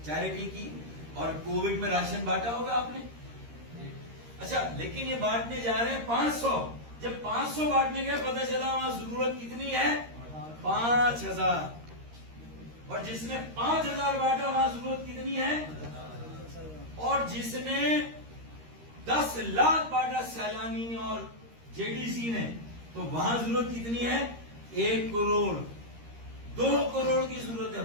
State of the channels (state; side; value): late; left; 13 ms